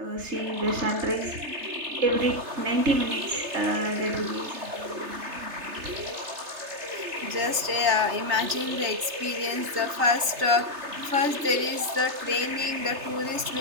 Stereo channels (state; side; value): late; left; 3.3 ms